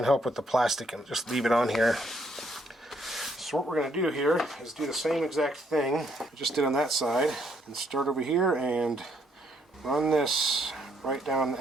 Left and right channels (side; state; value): both; normal; correlation 0.71